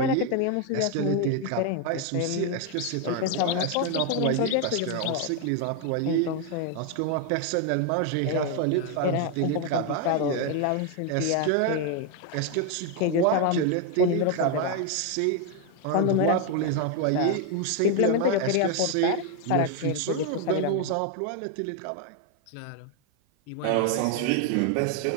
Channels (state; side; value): different; both; correlation 0.01